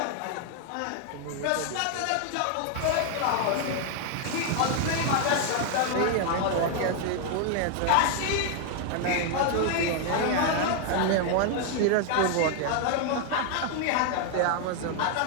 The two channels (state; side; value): different; both; correlation 0.00